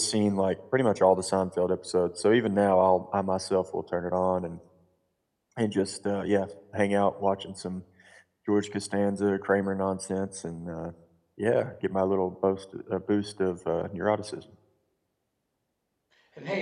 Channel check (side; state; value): both; identical; correlation 1.00